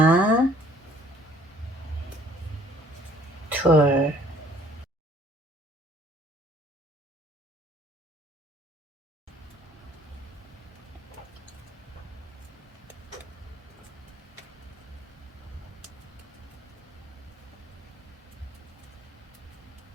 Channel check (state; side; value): normal; both; correlation 0.58